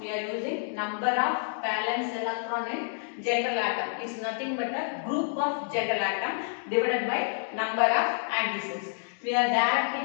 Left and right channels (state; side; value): silent; right; digital silence